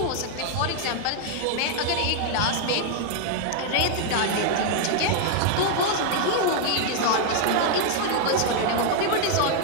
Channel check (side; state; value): both; different; correlation 0.00